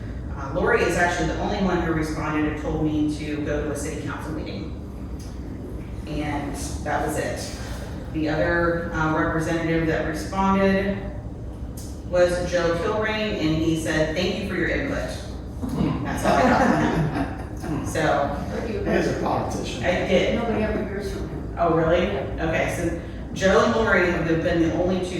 Lori is actually the only one who responded and told me to go to a city council meeting. And that was it. The other representative that responded was Joe Kilrain, and he said, "Thank you for your input." That's all I got from him. So. As a politician. I did. Nobody ever hears from him. Oh, really? Okay, so Joe and Lori have been the only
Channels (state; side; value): identical; both; correlation 1.00